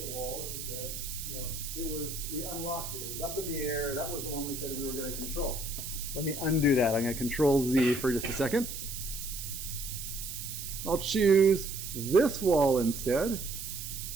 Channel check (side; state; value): right; noise; hiss, 7 dB below the sound